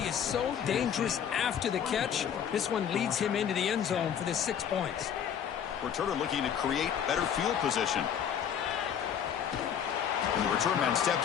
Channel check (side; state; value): right; quieter; 8.6 dB